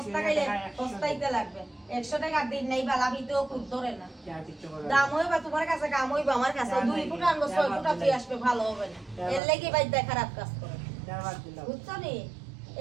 খাইলে সস্তাইতে লাগবে 100 টাকা দিন নাই বালা ভিতেও খুব ধরে না দাম হইবা তোমার কাছে কাম হইবা আমার কাছে 2 ফুট আনবো 6 ফুট তুই আসবে ভালো হবে না এর লাগি বাইদা খারাপ কাজ করে বুঝছো নি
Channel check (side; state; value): left; drops out; at 9.4 s